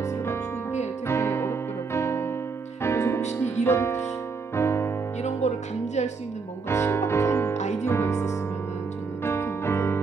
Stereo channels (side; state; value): left; quieter; 4.7 dB